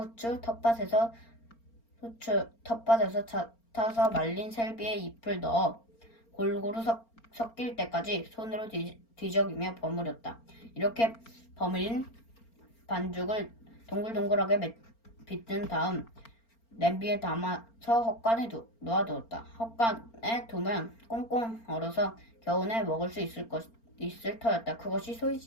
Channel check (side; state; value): right; late; 4.4 ms